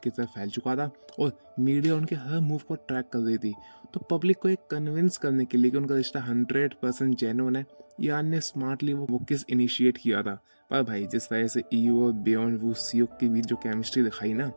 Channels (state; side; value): inverted; both; correlation -1.00